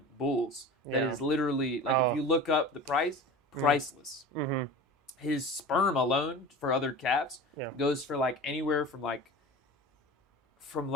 bulls. That Yeah. is literally like Oh. if you look up the price, priceless. Mm-hmm. His sperm alone for other calves Yeah. goes for like anywhere from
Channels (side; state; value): both; normal; correlation 0.35